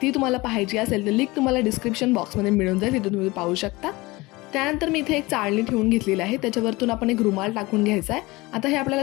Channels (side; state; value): right; quieter; 22.0 dB